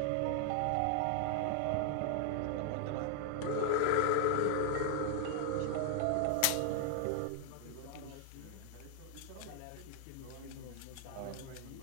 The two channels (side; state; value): both; different; correlation 0.00